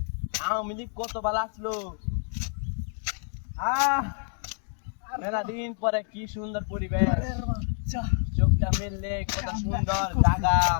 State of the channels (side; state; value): right; silent; 59 dB below the other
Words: আওয়ামী লীগ কত ভালো আসলো। মেলা দিন পরে কি সুন্দর পরিবেশ, চোখটা মেললে কত সুন্দর জায়গা,